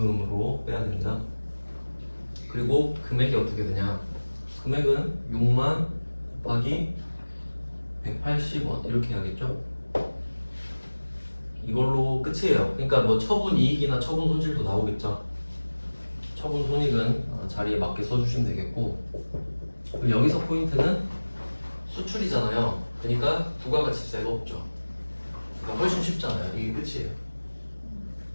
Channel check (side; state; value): both; inverted; correlation -1.00